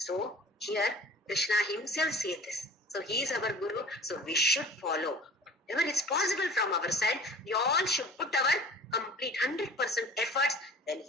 So here Krishna himself says this. So he is our Guru, so we should follow. Whatever is possible from our side, we all should put our complete 100% efforts. Then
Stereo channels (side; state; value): both; normal; correlation 0.44